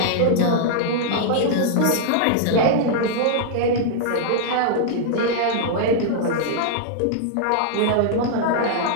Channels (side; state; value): both; different; correlation -0.01